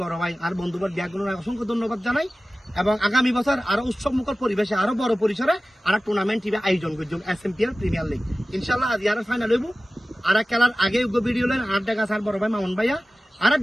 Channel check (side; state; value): both; normal; correlation 0.96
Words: বড় ভাই আর বন্ধুবার ব্যাগগুলোর অসংখ্য ধন্যবাদ জানাই এবং আগামী বছর আরো উৎসব মুখর পরিবেশে আরো বড় পরিসরে আর টুর্নামেন্ট আয়োজন করছি SMPL প্রিমিয়ার লিগ। ইনশাআল্লাহ আজ আর ফাইনাল হইব। আর খেলার আগে ভিডিও লেন আর দেখা স্যার বড় ভাই মামুন ভাইয়া আর